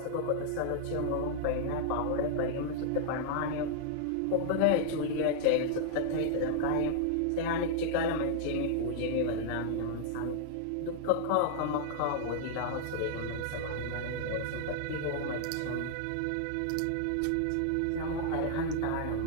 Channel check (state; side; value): different; both; correlation -0.01